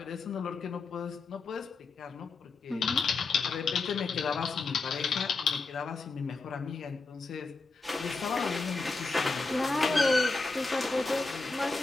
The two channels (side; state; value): right; quieter; 3.9 dB